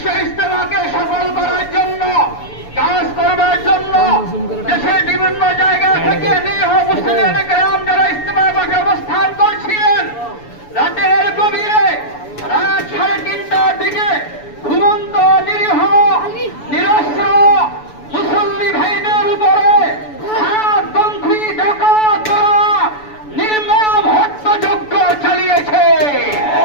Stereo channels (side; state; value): right; late; 6.9 ms